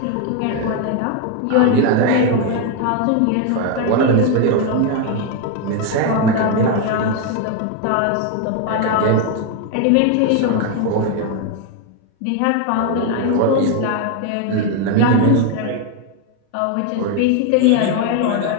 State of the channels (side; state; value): both; different; correlation 0.01